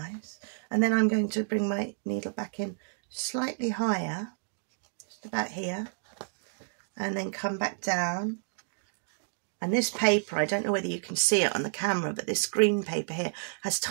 And then I'm going to bring my needle back in slightly higher, just about here, and then come back down. And this paper, I don't know whether you can see it on the camera, but this green paper here has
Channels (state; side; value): silent; left; digital silence